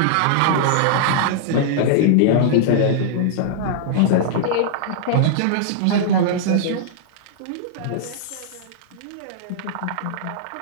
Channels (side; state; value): both; different; correlation -0.01